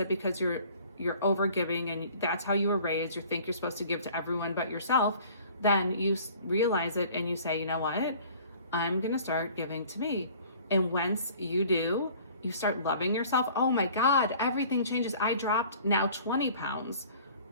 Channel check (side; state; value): both; inverted; correlation -0.50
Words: because you're overgiving and that's how you were raised, you think you're supposed to give to everyone but yourself, then you realize it and you say, you know what? I'm gonna start giving to me. And once you do, you start loving yourself. Oh my God, everything changes. I dropped now 20 pounds.